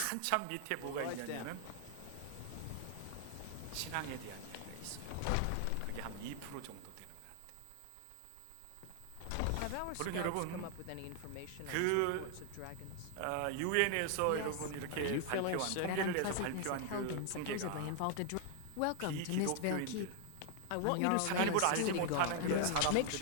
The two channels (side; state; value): both; different; correlation 0.00